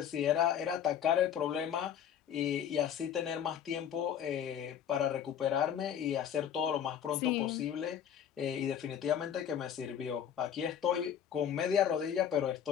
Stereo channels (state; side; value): quieter; right; 9.1 dB